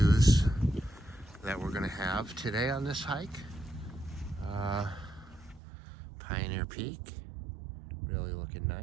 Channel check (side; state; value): left; drops out; at 5.6 s